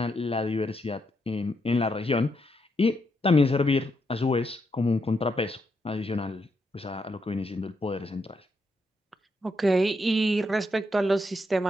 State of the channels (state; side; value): normal; both; correlation 0.80